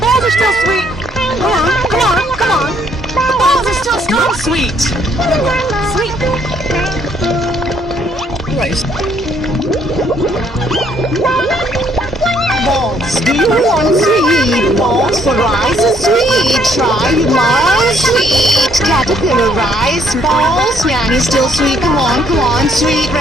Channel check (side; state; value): both; normal; correlation 0.67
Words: are still sweet. Come on, come on, come on. The balls are still strong sweet. Sweet. Rice. Balls. Do you want sweet balls for rice is sweet? Try my sweet caterpillar rice balls. Yanny still sweet. Come on, come on. Sweet